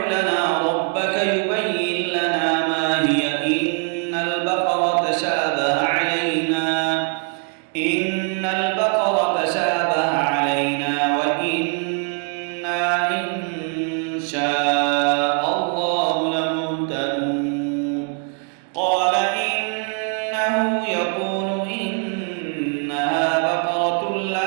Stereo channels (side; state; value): left; quieter; 38.1 dB